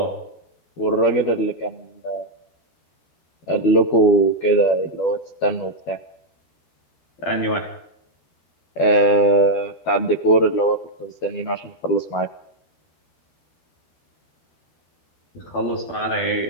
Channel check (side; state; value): right; late; 12 ms